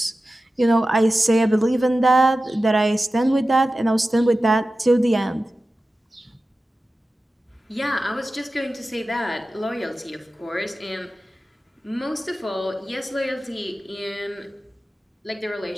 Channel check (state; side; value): normal; both; correlation 0.95